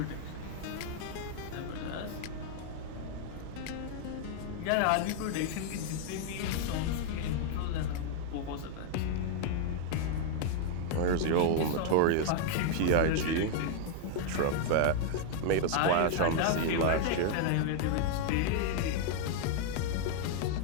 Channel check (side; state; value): both; different; correlation 0.00